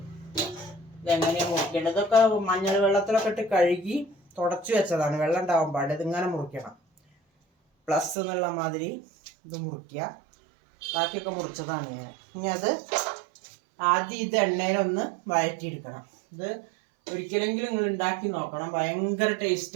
ഇതെങ്ങനെയാണ് മുറിക്കേണ്ടത്. ഇതൊക്കെ മഞ്ഞൾ വെള്ളത്തിലൊക്കെ ഇട്ട് കഴുകി തുടച്ചു വെച്ചതാണ്. വെള്ളം ഉണ്ടാവാൻ പാടില്ല. ഇതിങ്ങനെ മുറിക്കണം. പ്ലസ് എന്നുള്ള മാതിരി ഇത് മുറിക്കുക. ബാക്കിയൊക്കെ മുറിച്ചതാണ് ഞാൻ. ഇനി അത് ആദ്യം ഇത് എണ്ണയിലൊന്ന് വഴറ്റിയെടുക്കണം. ഇത് ഒരിക്കലെങ്കിലും നിങ്ങൾ ഉണ്ടാക്കി നോക്കണം. ഭയങ്കര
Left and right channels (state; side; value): drops out; left; at 8.2 s